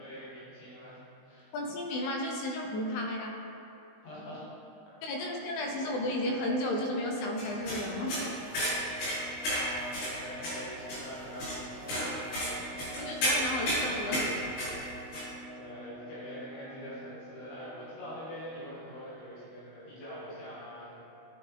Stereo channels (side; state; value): right; late; 20 ms